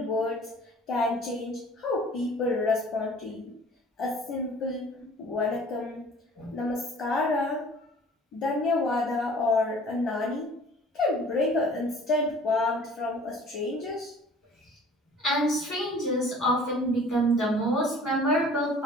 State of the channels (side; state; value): both; normal; correlation 0.49